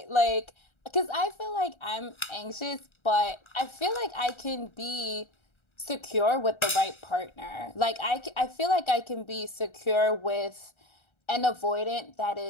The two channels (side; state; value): right; late; 1.3 ms